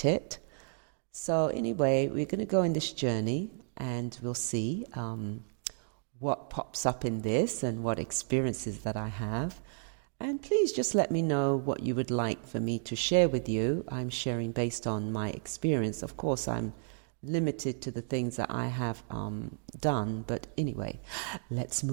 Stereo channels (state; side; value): silent; left; digital silence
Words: it. So anyway, we're going to go on this journey and we'll see what pops up in this and what experiences that I have. And please just let me know what you would like for me to share with you. I'm sharing based on my experience. Of course, I'm limited to the things that I have done, but anyway, let's